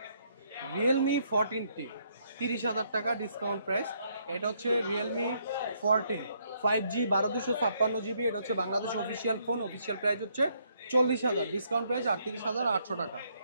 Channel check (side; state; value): both; inverted; correlation -0.72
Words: রিয়েলমি 14T 30,000 টাকা ডিসকাউন্ট প্রাইস। এটা হচ্ছে রিয়েলমি 14 5G 12,256GB, এটা হচ্ছে Bangladesh official phone, official price হচ্ছে 40,000, ডিসকাউন্ট প্রাইস 38,800 টাকা।